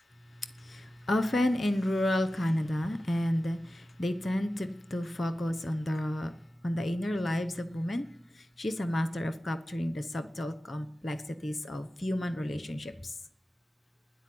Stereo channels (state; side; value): normal; both; correlation 0.94